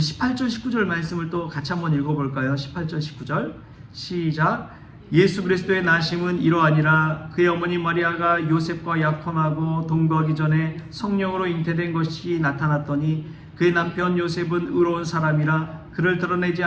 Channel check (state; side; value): identical; both; correlation 1.00